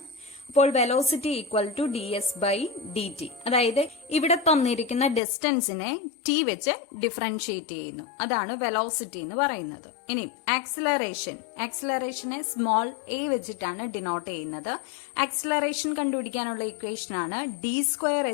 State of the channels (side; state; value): right; drops out; at 5.2 s